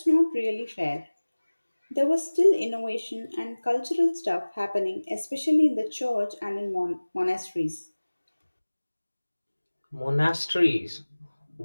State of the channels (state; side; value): inverted; both; correlation -1.00